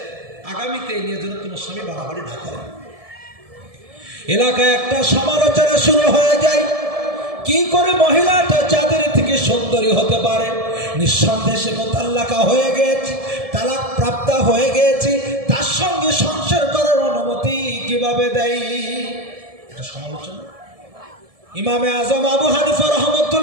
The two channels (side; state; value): left; late; 1.7 ms